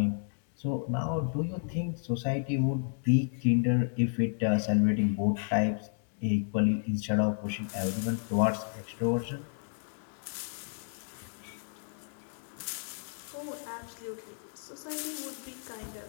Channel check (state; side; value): silent; right; 57 dB below the other